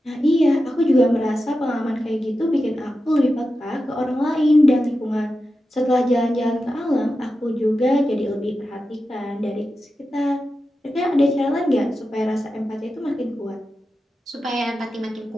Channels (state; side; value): normal; both; correlation 0.91